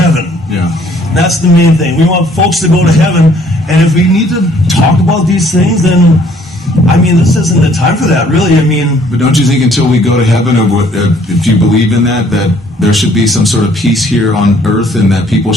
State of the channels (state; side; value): normal; both; correlation 0.61